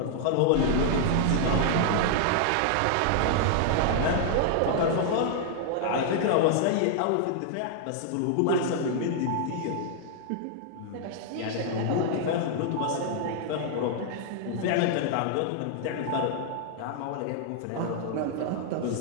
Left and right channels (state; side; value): different; both; correlation -0.01